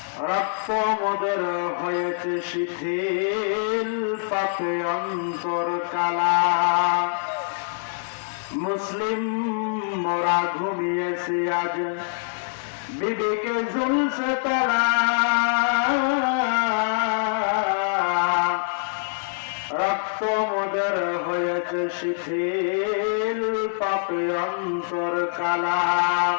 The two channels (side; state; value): right; silent; digital silence